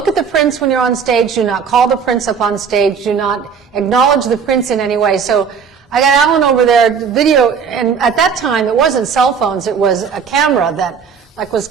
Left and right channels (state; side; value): quieter; left; 6.6 dB